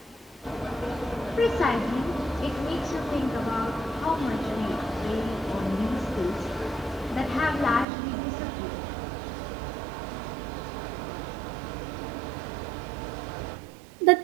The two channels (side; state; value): left; drops out; at 7.9 s